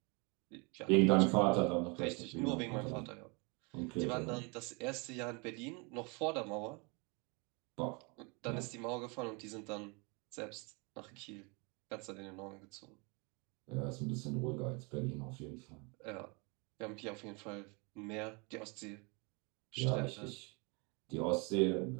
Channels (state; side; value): quieter; left; 31.0 dB